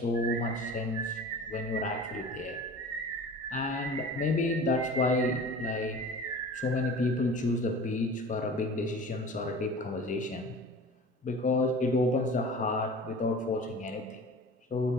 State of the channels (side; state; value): both; normal; correlation 0.39